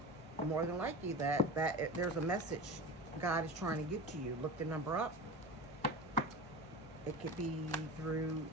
more than likely that there's a message God is trying to get to you. Look the number up. It could be through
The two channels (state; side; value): normal; both; correlation 0.30